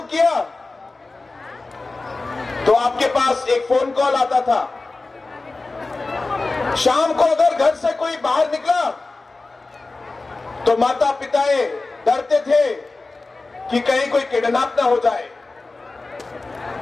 किया तो आपके पास एक फोन कॉल आता था। शाम को अगर घर से कोई बाहर निकला तो माता पिताएं डरते थे कि कहीं कोई किडनैप ना हो जाए।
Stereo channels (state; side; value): quieter; right; 3.4 dB